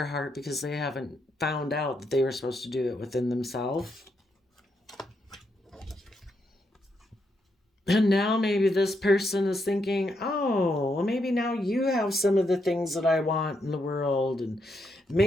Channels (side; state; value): both; normal; correlation 0.80